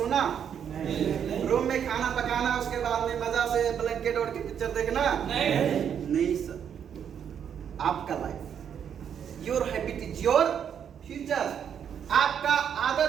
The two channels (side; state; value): left; quieter; 8.3 dB